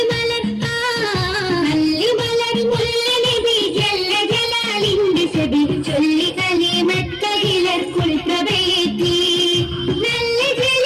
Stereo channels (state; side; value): identical; both; correlation 1.00